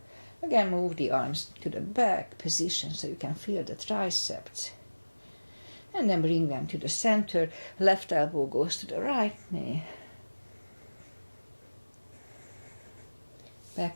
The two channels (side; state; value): both; inverted; correlation -1.00